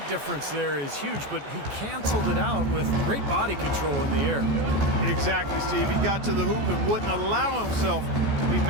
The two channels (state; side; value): late; left; 14 ms